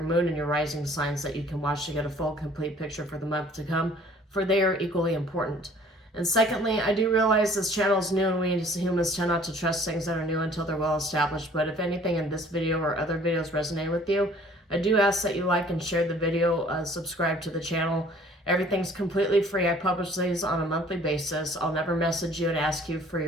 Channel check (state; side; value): normal; both; correlation 0.54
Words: moon and your rising signs that you can watch to get a full, complete picture for the month to come, for they are equally important. And secondly, I do realize this channel is new and we as humans tend not to trust things that are new until they're well established. But if anything in this video or other videos resonate with you, I do ask that you like and share the video, subscribe to the channel. Everything's completely free. I publish these on a monthly basis. I'll never message you and ask you for